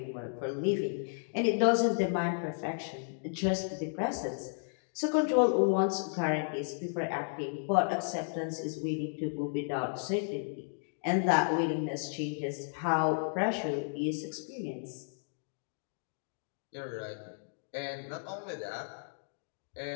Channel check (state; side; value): silent; right; digital silence